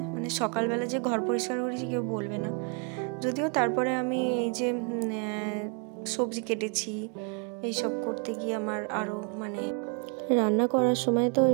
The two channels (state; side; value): quieter; left; 38.1 dB